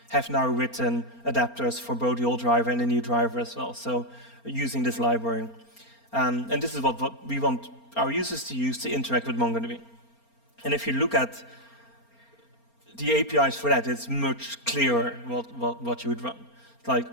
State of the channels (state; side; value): late; right; 4.3 ms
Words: have now written adapters for both the old driver and the new driver as well, so using this library. And this is what we want our users to use to interact with MongoDB. And if you look at the APIs for that, it's much clearer what you would run. Like,